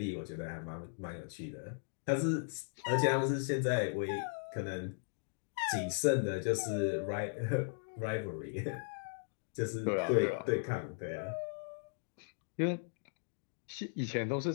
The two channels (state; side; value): silent; right; digital silence